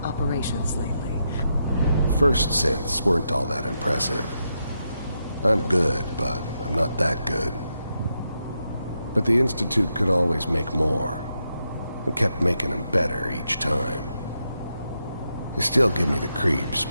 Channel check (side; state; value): both; inverted; correlation -0.84